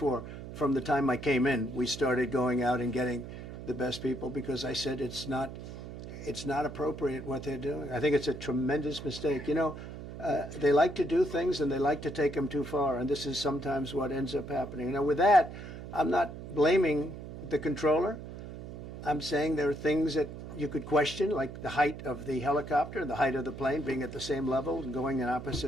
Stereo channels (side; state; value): right; noise; hum, 11 dB below the sound